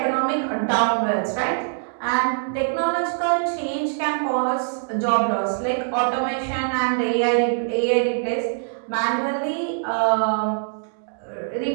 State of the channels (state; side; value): silent; left; digital silence